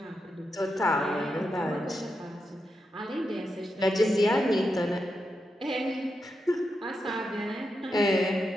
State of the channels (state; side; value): normal; both; correlation 0.86